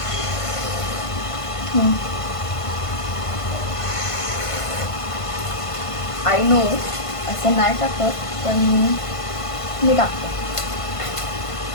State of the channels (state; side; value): late; right; 1.5 ms